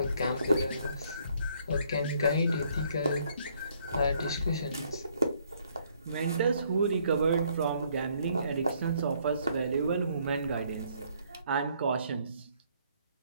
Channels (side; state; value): both; inverted; correlation -0.67